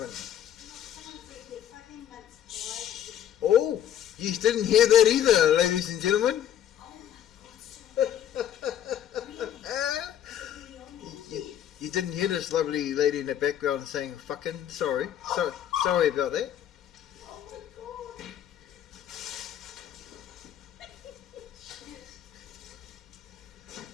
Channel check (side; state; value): right; quieter; 10.4 dB